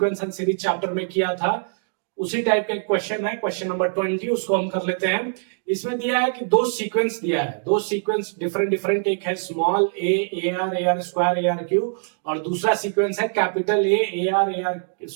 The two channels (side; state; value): left; silent; digital silence